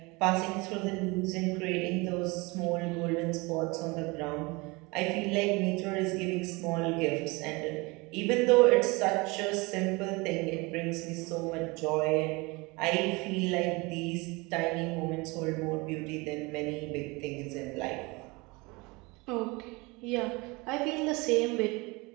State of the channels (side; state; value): left; quieter; 25.4 dB